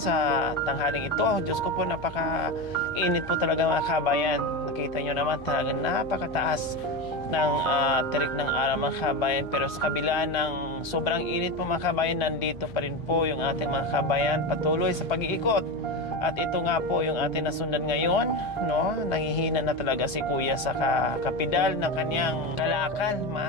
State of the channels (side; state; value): left; noise; hum, 18 dB below the sound